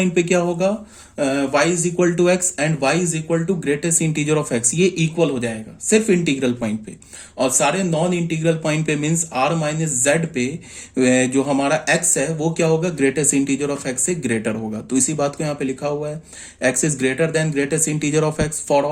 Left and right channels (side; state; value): both; identical; correlation 1.00